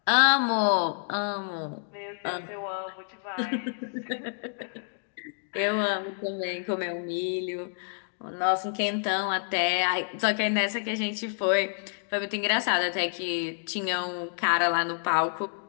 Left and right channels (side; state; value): right; silent; digital silence